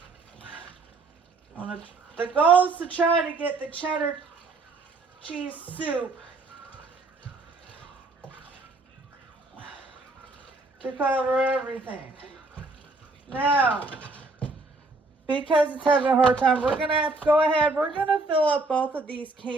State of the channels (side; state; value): left; quieter; 3.4 dB